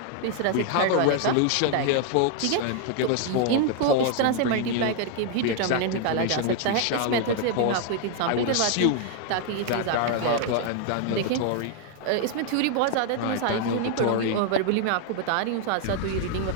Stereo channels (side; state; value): both; different; correlation 0.00